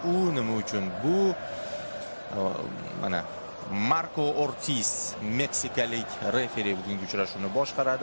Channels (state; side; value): inverted; both; correlation -1.00